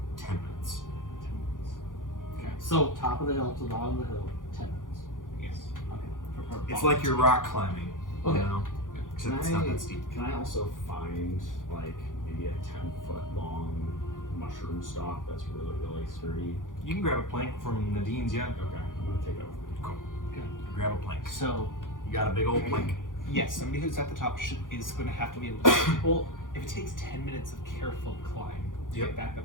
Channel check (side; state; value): right; late; 0.89 ms